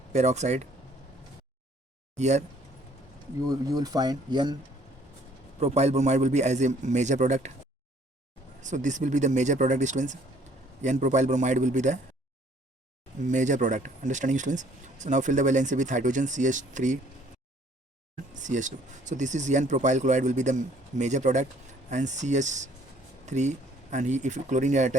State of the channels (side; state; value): both; normal; correlation 0.60